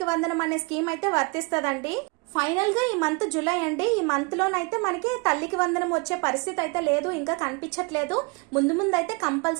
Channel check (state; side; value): quieter; left; 30.0 dB